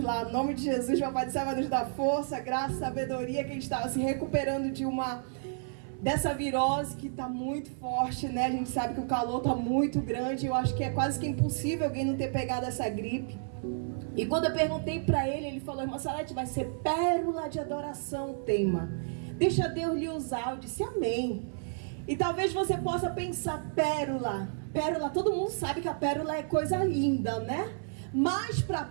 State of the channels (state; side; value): silent; left; 57 dB below the other